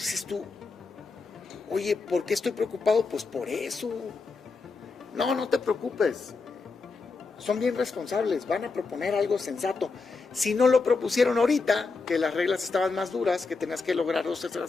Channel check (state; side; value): quieter; right; 4.2 dB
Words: dices tú, oye, ¿por qué estoy preocupado? Pues por eso. No te preocupes. Son bien responsables, van a proponer algo sensato. Si no lo propusieron ahorita, que las reglas estaban más duras, que tenías que lograr